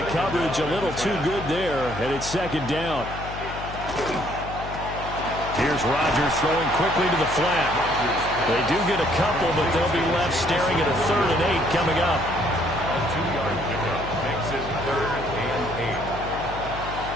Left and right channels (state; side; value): noise; left; hum, 10 dB below the sound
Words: coverage a little too good there, and it's 2nd down. Here's Rodgers throwing quickly to the flat. They do get a couple, but they'll be left staring at a 3rd and 8 coming up. A 2-yard pickup makes it 3rd and